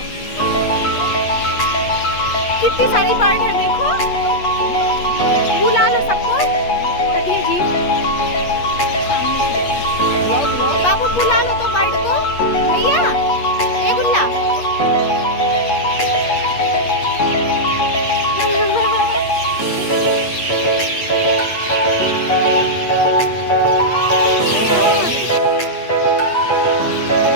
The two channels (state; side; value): late; right; 8.4 ms